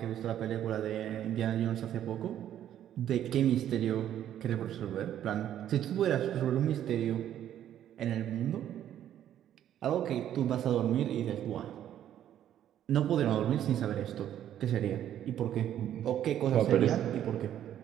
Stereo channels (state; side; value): quieter; left; 11.0 dB